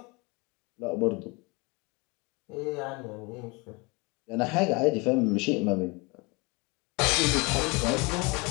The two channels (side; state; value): right; quieter; 27.6 dB